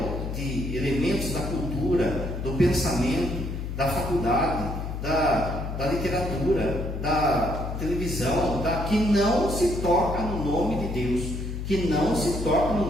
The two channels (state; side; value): noise; left; hum, 5 dB below the sound